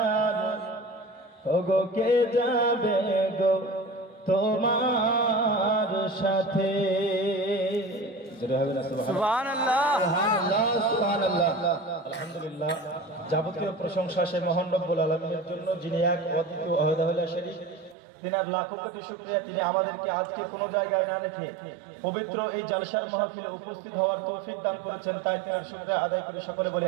ওগো কে যাবে গো তোমার সাথে। সুবহানাল্লাহ সুবহানাল্লাহ আলহামদুলিল্লাহ। যাবতীয় প্রশংসা সে মহান রব্বুল আলামিনের জন্য, যিনি এক অদ্বিতীয় ওয়াহদাহুল শরীক। তিনার লাখো কোটি শুকরিয়া, তিনি আমাদেরকে আজকে কোনো জায়গায় না রেখে পবিত্র এই জালসার মাহফিলে উপস্থিত হওয়ার তৌফিক দান করেছেন, তাই তিনার শুকরিয়া আদায় করে সকলে বলে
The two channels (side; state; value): left; drops out; at 17.9 s